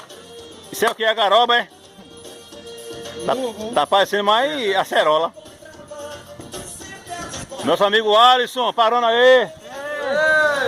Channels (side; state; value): both; identical; correlation 1.00